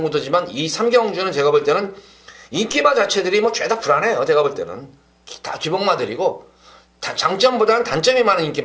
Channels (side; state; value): both; identical; correlation 1.00